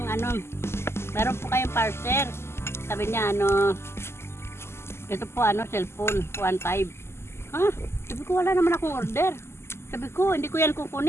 po kayong parcel. Sabi niya ito po cellphone 1.5. Ha? Sabi ko wala naman akong order. Sabi ko hindi ko yan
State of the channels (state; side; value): late; right; 0.12 ms